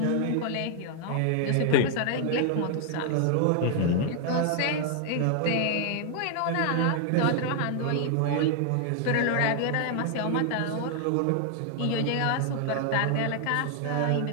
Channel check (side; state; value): both; different; correlation 0.00